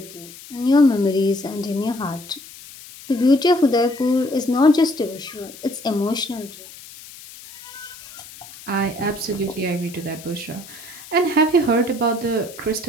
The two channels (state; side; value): noise; left; hiss, 17 dB below the sound